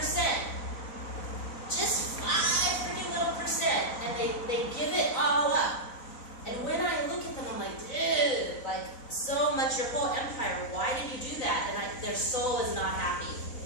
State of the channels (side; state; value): right; late; 4.0 ms